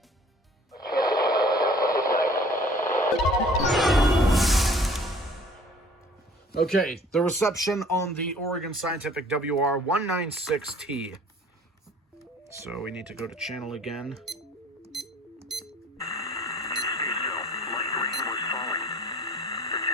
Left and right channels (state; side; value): normal; both; correlation 0.52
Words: Okay, the reception on the Oregon Scientific WR196T. So we need to go to channel again.